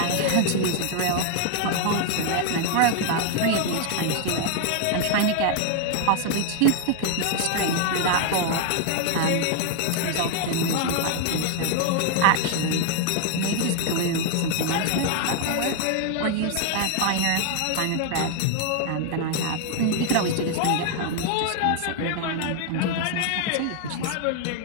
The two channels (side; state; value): both; different; correlation 0.00